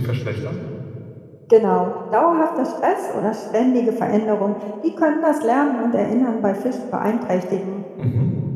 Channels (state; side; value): identical; both; correlation 1.00